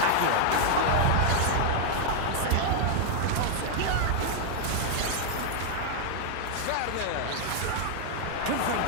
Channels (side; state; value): both; different; correlation 0.00